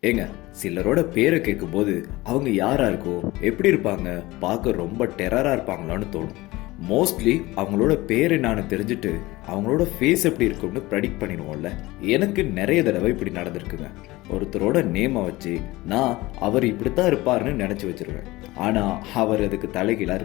ஏங்க, சிலரோட பேரை கேட்கும்போது அவங்க யாரா இருக்கோ, எப்படி இருப்பாங்க, பார்க்க ரொம்ப டெரரா இருப்பாங்களான்னு தோணும். மோஸ்ட்லி அவங்களோட பேர் என்னன்னு தெரிஞ்சுட்டு அவங்களோட ஃபேஸ் எப்படி இருக்கும்னு ப்ரெடிக்ட் பண்ணிடுவோம்ல. எனக்கு நிறைய தடவை இப்படி நடந்திருக்குங்க. ஒருத்தரோட நேமை வச்சு நான் அவர் இப்படித்தான் இருப்பாருன்னு நினைச்சு வச்சிருவேன். ஆனா அவர் அதுக்கு தலைகீழா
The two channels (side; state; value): right; quieter; 19.8 dB